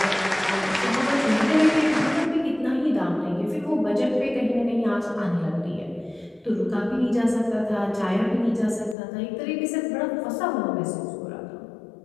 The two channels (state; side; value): drops out; right; at 9.0 s